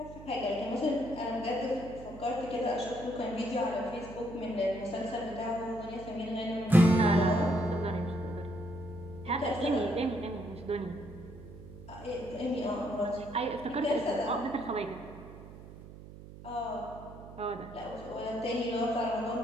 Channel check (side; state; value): right; noise; hum, 15 dB below the sound